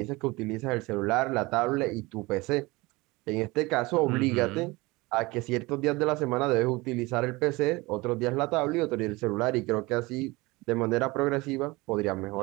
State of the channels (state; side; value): quieter; left; 22.7 dB